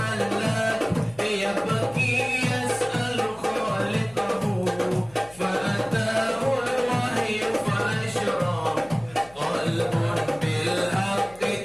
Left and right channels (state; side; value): noise; left; hum, 24 dB below the sound